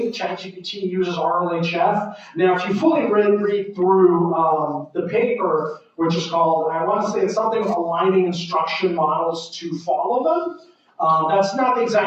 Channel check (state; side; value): identical; both; correlation 1.00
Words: ChatGPT uses RLHF. Now, if you fully read through the paper, which is called, I want to say it's something aligning instruction models to follow them. That's not the